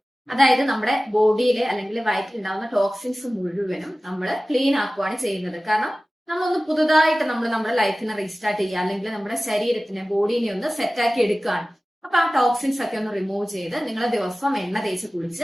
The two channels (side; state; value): both; normal; correlation 0.97